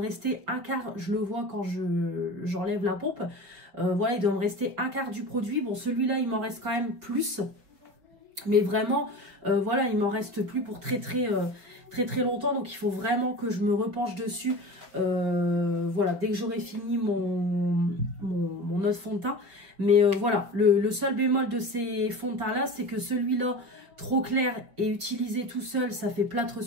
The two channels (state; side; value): late; left; 5.5 ms